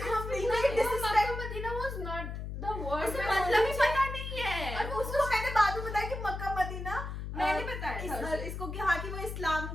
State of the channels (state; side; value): noise; left; hum, 6 dB below the sound